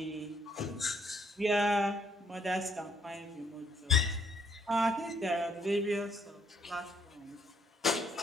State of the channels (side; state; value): both; normal; correlation 0.67